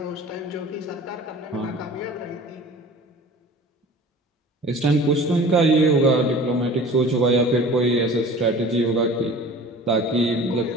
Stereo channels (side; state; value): both; normal; correlation 0.42